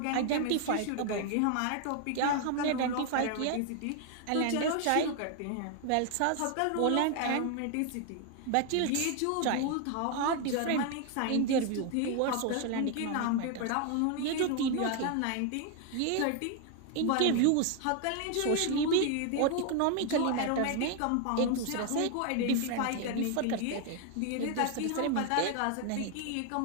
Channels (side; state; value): both; different; correlation 0.00